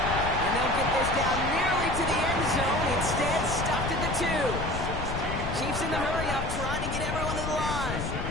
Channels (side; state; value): left; noise; rumble, 4 dB below the sound